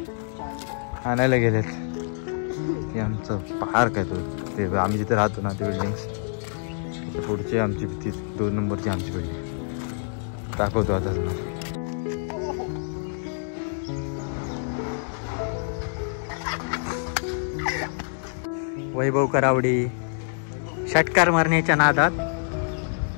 आणायला गेलेत. ते आमचं पार्क आहे, ते आम्ही जिथे राहतो ना, ते बिल्डिंग्स पुढची आमची ती 2 नंबरची आमची बिल्डिंग दाखवतो आता तुम्हाला. वैभव करावडे षटकार मारण्याच्या नादात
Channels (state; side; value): silent; right; digital silence